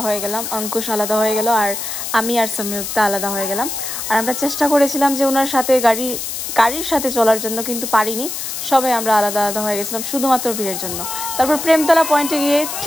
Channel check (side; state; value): left; noise; hiss, 5 dB below the sound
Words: হয়ে গেলাম, অঙ্কুশ আলাদা হয়ে গেল আর আমি আর সংযুক্তা আলাদা হয়ে গেলাম। আর আমরা চেষ্টা করেছিলাম যে ওনার সাথে গাড়ির সাথে চলার জন্য, কিন্তু পারিনি। সবাই আমরা আলাদা আলাদা হয়ে গেছিলাম শুধুমাত্র ভিড়ের জন্য। তারপর প্রেমতলা পয়েন্টে গিয়ে